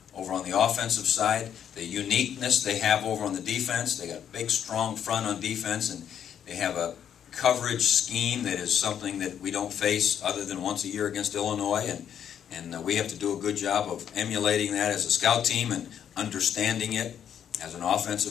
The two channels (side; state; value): right; quieter; 9.1 dB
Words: over on the offensive side, the uniqueness they have over on the defense. They got a big, strong front on defense, and they have a coverage scheme that is something that we don't face other than once a year against Illinois, and we have to do a good job of emulating that as a scout team and understanding it as an